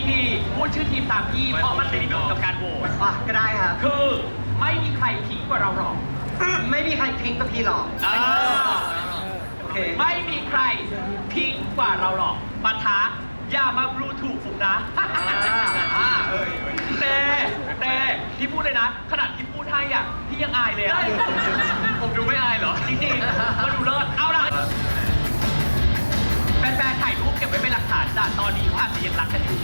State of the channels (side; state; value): both; inverted; correlation -1.00